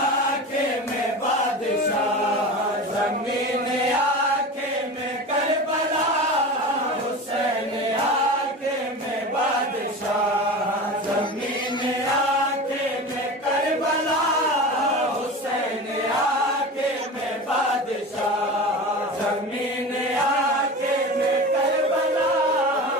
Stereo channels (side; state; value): both; normal; correlation 0.30